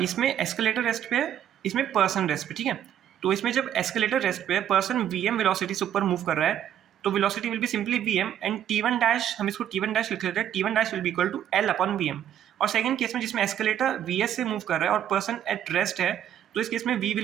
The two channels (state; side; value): quieter; left; 10.3 dB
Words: इसमें एस्केलेटर रेस्ट पे है, इसमें पर्सन रेस्ट पे, ठीक है। तो इसमें जब एस्केलेटर रेस्ट पे है, पर्सन vm वेलोसिटी से ऊपर मूव कर रहा है, तो velocity will be simply vm and t1 dash, हम इसको t1 डैश लिख लेते हैं, t1 dash will be equal to l upon vm। और सेकंड केस में जिसमें एस्केलेटर vs से मूव कर रहा है और पर्सन एट रेस्ट है, तो इस केस में v